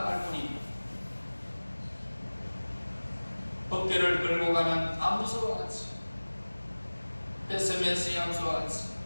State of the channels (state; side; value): inverted; both; correlation -1.00